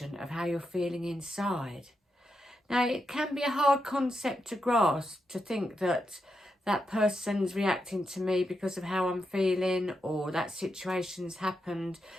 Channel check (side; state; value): both; normal; correlation 0.85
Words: of how you're feeling inside. Now, it can be a hard concept to grasp, to think that that person's reacting to me because of how I'm feeling, or that situation's happened.